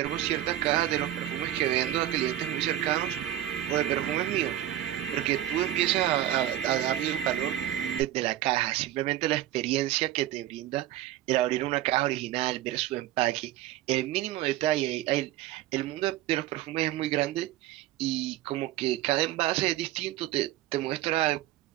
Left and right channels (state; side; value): quieter; left; 13.2 dB